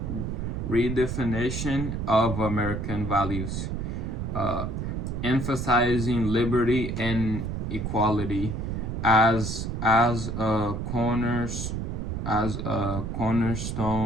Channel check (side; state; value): right; noise; rumble, 3 dB below the sound